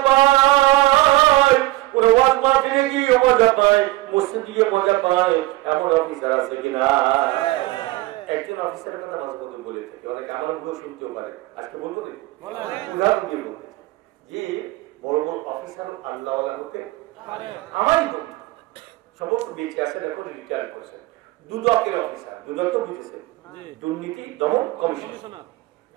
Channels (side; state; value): left; quieter; 19.1 dB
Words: পায়, ওরা ওয়াজ মাহফিলে গিয়ে মজা পায়, মসজিদে গিয়ে মজা পায়। এমন অফিসার আছে কিনা? একজন অফিসারের কথা মাঝপথে বলে থাকে, অনেকে আমার মুখেও শুনতেও পারে। আজকে বলবো উদাহরণ দিয়ে বলতে যে বড় বড় অফিসার আল্লাহওয়ালা হতে আমারই বন্ধু, সমস্ত বেঁচে আছেন, এখন রিটায়ার করেছেন, দুদকের অফিসার। দুদক তো বুঝেছে, দুর্নীতি দমন কমিশন।